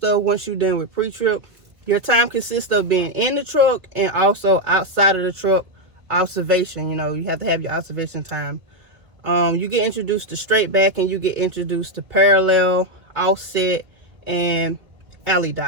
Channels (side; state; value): left; late; 2.0 ms